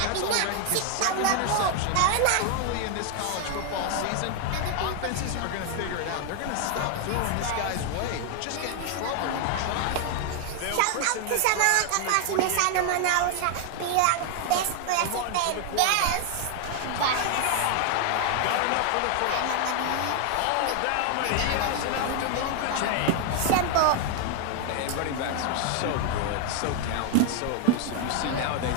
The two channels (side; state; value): both; different; correlation 0.00